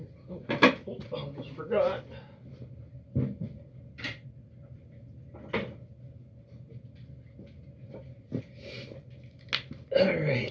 Almost forgot. All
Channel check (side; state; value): both; identical; correlation 1.00